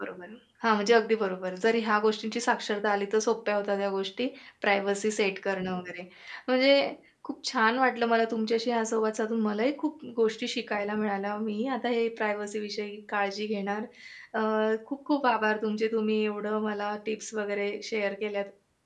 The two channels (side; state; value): both; identical; correlation 1.00